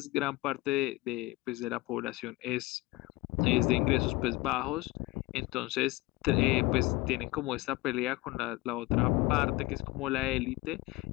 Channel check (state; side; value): quieter; right; 20.2 dB